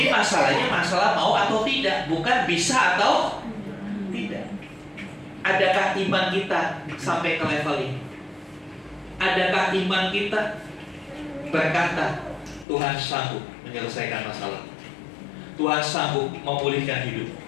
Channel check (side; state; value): right; drops out; at 12.7 s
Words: masalahnya masalah mau atau tidak, bukan bisa atau tidak. Adakah iman kita sampai ke level ini? Adakah iman kita berkata, Tuhan sanggup menyelesaikan masalah, Tuhan sanggup memulihkan hidup,